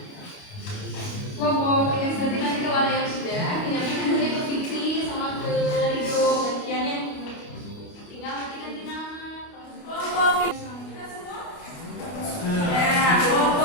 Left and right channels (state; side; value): late; right; 29 ms